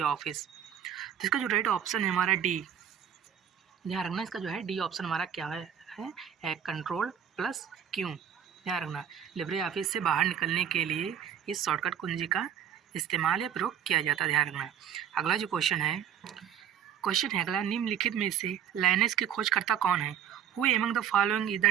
Office? तो इसका जो राइट ऑप्शन है हमारा डी। ध्यान रखना, इसका जो है डी ऑप्शन हमारा क्या है कंट्रोल प्लस क्यू। ध्यान रखना, लिब्रे ऑफिस से बाहर निकलने के लिए इस शॉर्टकट कुंजी का इस्तेमाल या प्रयोग किया जाता है। ध्यान रखना। अगला जो क्वेश्चन है अगला, निम्नलिखित में से लाइनेक्स के खोजकर्ता कौन है? Who among the following is the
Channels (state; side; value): quieter; left; 9.0 dB